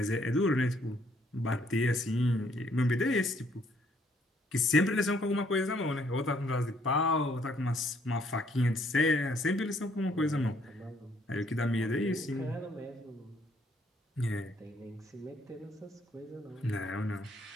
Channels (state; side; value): normal; both; correlation 0.67